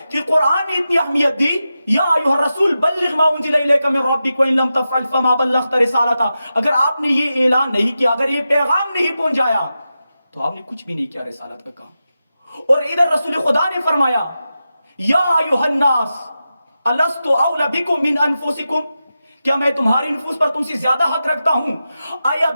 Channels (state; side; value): inverted; both; correlation -0.91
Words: کہ قرآن نے اتنی اہمیت دی، یا ایھا الرسول بلغ ما انزل الیک من ربک وان لم تفعل فما بلغت رسالتہ، اگر آپ نے یہ اعلان نہیں کیا، اگر یہ پیغام نہیں پہنچایا تو آپ نے کچھ بھی نہیں کیا رسالت کا کام۔ اور ادھر رسول خدا نے فرمایا یا ایھا الناس الست اولی بکم من انفسکم، کیا میں تمہاری نفوس پر تم سے زیادہ حق رکھتا ہوں؟ آیا